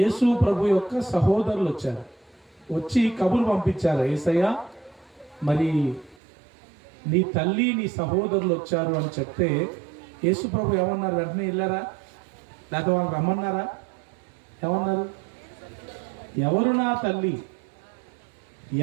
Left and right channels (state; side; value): drops out; left; at 6.2 s